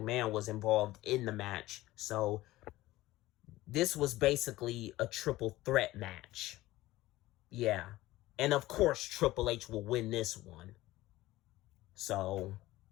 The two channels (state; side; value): quieter; right; 17.3 dB